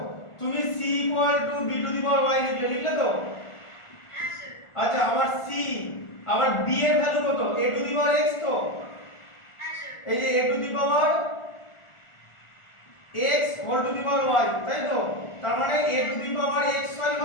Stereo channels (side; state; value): right; late; 1.4 ms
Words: তুমি c equal two b to the power y লিখলে তো, হ্যাঁ স্যার আচ্ছা আবার c, আবার b এর ভ্যালু কত, a to the power x তো, হ্যাঁ স্যার এই যে a to the power x whole to the power y, তাই তো, তার মানে a to the power x y